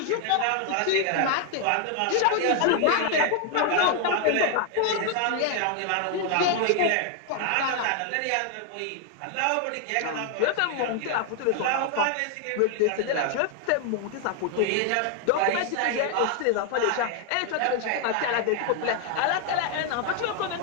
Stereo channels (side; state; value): both; different; correlation 0.00